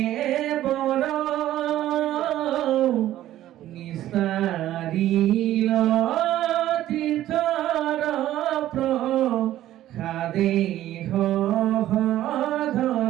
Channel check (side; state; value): left; quieter; 13.4 dB